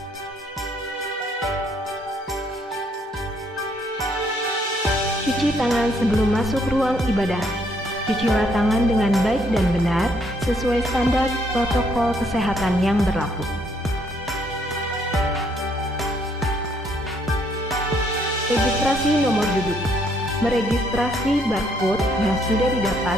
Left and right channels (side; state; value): both; normal; correlation 0.69